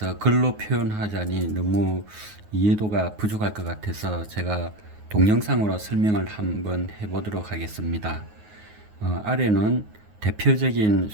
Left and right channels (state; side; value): late; left; 9.5 ms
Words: 글로 표현하자니 너무 이해도가 부족할 것 같아서 제가 동영상으로 설명을 한번 해보도록 하겠습니다. 아래는 대표적인